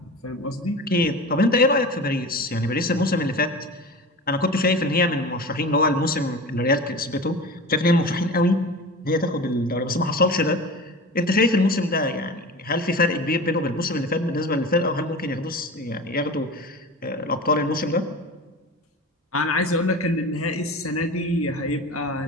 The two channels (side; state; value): both; normal; correlation 0.33